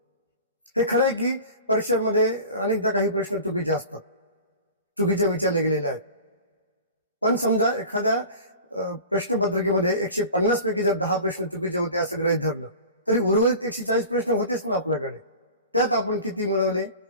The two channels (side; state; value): both; inverted; correlation -0.38